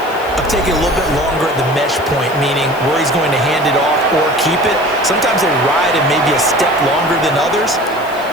of taking a little bit longer at the mesh point, meaning where he's going to hand it off or keep it. Sometimes they ride it maybe a step longer than others.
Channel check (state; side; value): noise; left; hiss, 21 dB below the sound